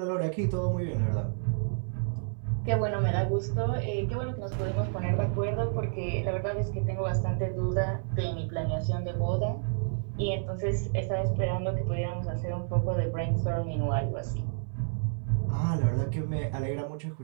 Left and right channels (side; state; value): left; silent; 58 dB below the other